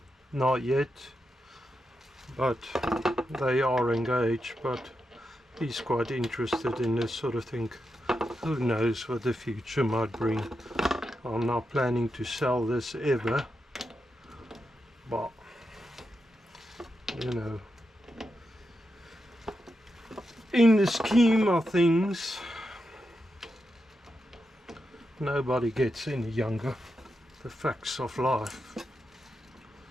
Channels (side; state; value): both; normal; correlation 0.87